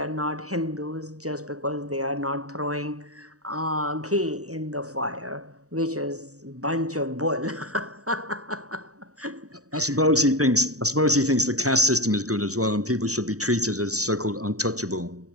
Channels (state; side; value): late; left; 0.66 ms